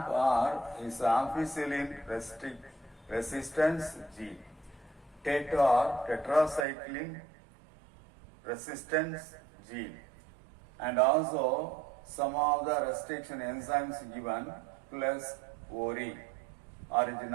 is ampicillin resistance gene. TET-R, tetracycline resistance gene. And also some of the restriction enzymes given plus ORI, origin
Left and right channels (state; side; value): drops out; left; at 6.7 s